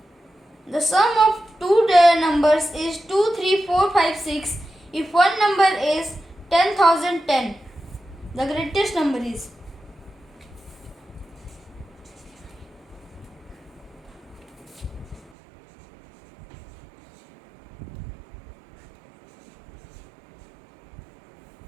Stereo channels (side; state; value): left; drops out; at 15.3 s